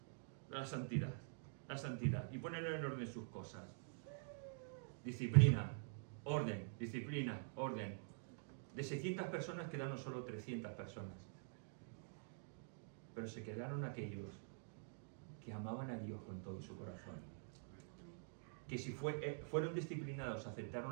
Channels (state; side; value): silent; left; digital silence